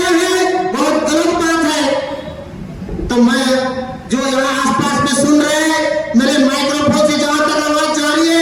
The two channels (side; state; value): both; identical; correlation 1.00